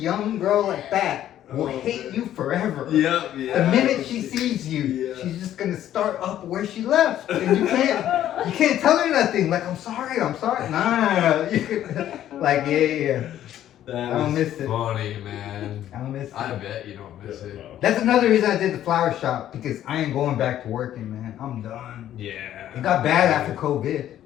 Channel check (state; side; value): quieter; right; 11.8 dB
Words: girl like that will Oh, hate man. you forever. Yeah, yeah. The minute she sees you, Yeah. she's just gonna start up where she left, and you can't tell her nothing. Like, I'm sorry. Nah. You could, like, yeah. That I don't was miss it. funny, man. I don't miss it. I bet you don't miss it. That's another reason I did the flower shop, because I ain't going back to working, man. I'm done. Yeah. It got bad after COVID.